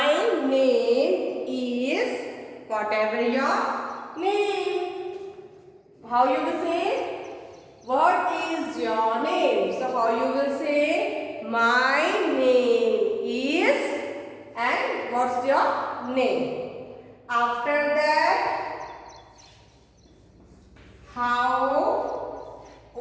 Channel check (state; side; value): identical; both; correlation 1.00